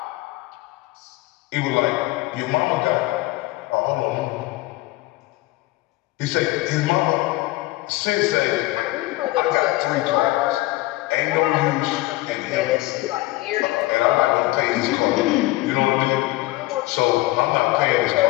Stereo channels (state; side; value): quieter; right; 19.2 dB